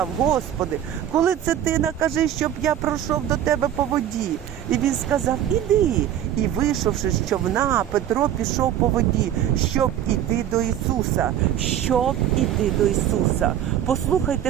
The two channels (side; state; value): left; quieter; 10.9 dB